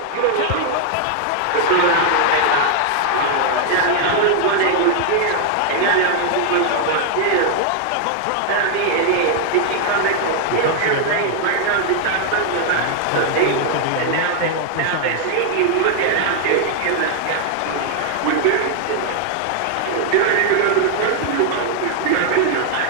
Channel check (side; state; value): both; different; correlation 0.00